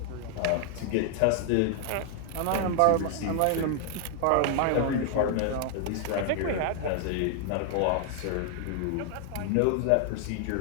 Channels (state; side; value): different; both; correlation 0.00